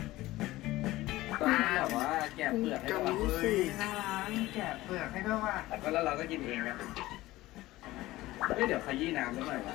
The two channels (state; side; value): quieter; right; 17.5 dB